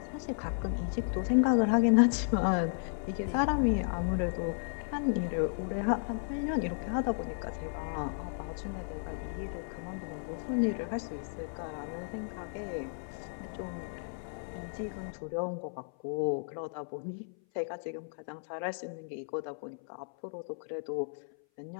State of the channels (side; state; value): right; silent; 55 dB below the other